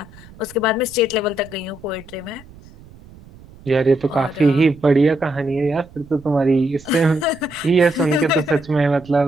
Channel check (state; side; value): noise; right; rumble, 22 dB below the sound